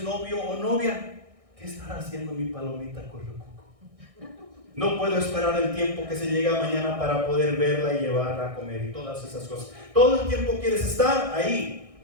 novio o novia, ¿qué estará haciendo mi palomita correcuco? No puedo esperar el tiempo que se llega mañana para poder verla y llevarla a comer y todas esas cosas. Todo el tiempo quieres estar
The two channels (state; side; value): late; left; 1.6 ms